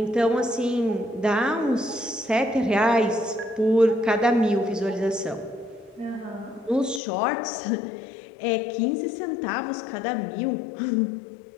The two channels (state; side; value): drops out; right; at 7.0 s